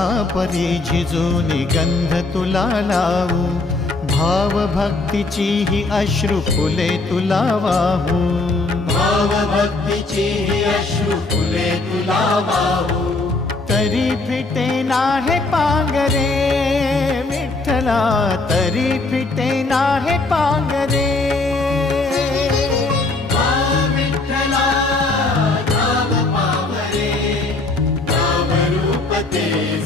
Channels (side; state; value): right; quieter; 3.3 dB